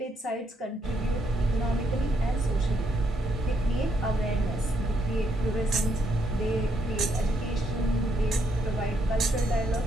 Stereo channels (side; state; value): both; normal; correlation 0.75